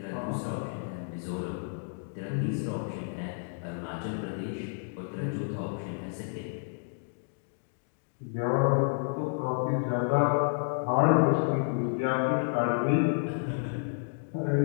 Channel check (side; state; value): right; silent; digital silence